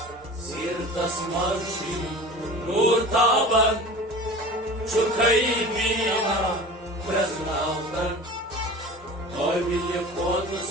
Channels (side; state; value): both; normal; correlation 0.37